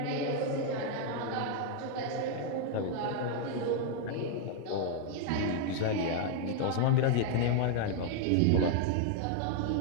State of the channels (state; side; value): different; both; correlation 0.00